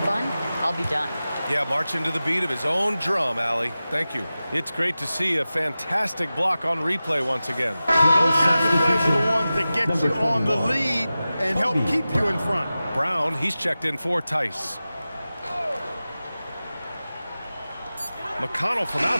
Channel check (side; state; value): both; inverted; correlation -0.95